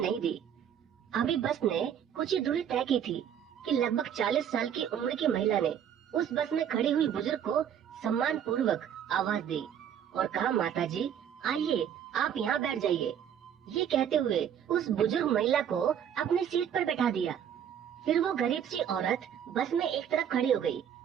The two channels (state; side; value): quieter; left; 9.0 dB